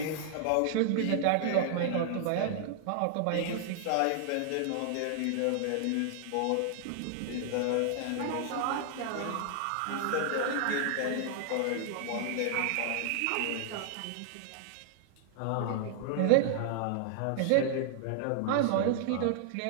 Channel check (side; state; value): both; different; correlation -0.01